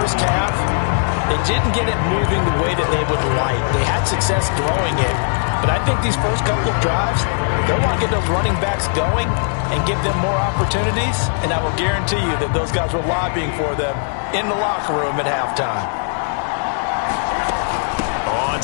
half they didn't get it moving the way that they would like. They had success throwing it, but I think these first couple of drives, they'll want to get those running backs going and give them more opportunities, and I will guarantee you that those guys were lobbying for them in the locker room at halftime. On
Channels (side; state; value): right; silent; digital silence